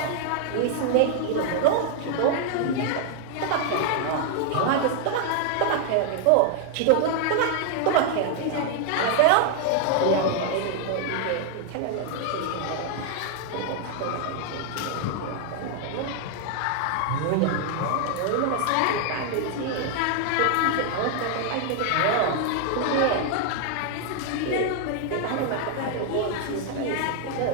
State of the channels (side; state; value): both; different; correlation 0.00